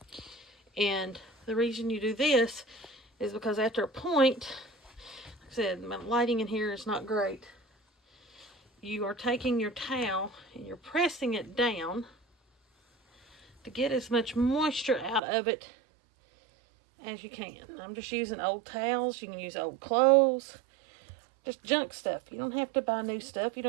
And the reason you do this is because after a point, like I said, my lighting in here is not great. You are taking your towel and you're pressing it down to get as much moisture out of it as you can. I'm just using old towels. You can use old clothes. Just junk stuff. You don't have to buy new stuff. You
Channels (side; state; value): left; drops out; at 15.2 s